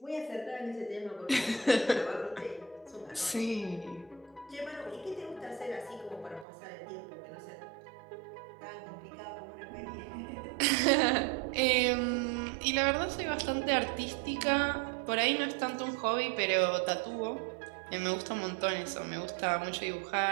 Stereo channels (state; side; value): drops out; left; at 6.5 s